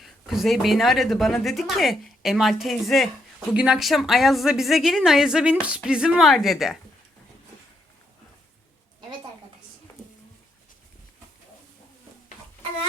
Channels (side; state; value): both; normal; correlation 0.77